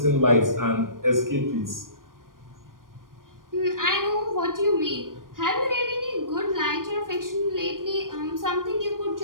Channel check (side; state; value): left; late; 0.90 ms